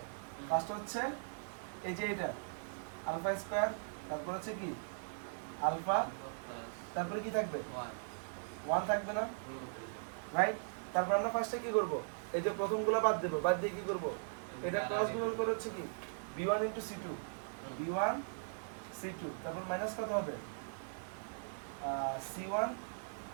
ফার্স্ট হচ্ছে এই যে এটা আলফা স্কয়ার, তারপর হচ্ছে কি আলফা, তারপরে কি থাকবে 1 থাকবে না, রাইট? তারপর আমরা ফার্স্টে কি করব? এই যে প্রথমগুলো বাদ দেব, বাদ দিয়ে কি করব? এটা ক্রস গুণন করে হচ্ছে কি b1 * c2, b1 c2, তারপর মাইনাস কত হবে c1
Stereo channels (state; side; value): silent; left; digital silence